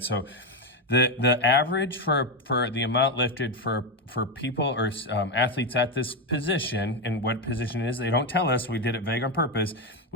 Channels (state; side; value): normal; both; correlation 0.08